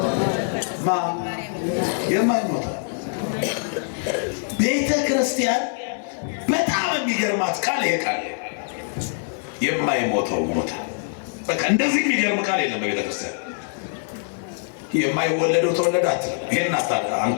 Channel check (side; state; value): right; silent; 63 dB below the other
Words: የማይሞተው ቤተ ክርስቲያን በጣም የሚገርማት ቃል ይሄ ቃል የማይሞተው ሞተ። በቃ እንደዚህ የሚገርም ቃል የለም በቤተ ክርስቲያን። የማይወለደው ተወለደ አትልም። ይሄን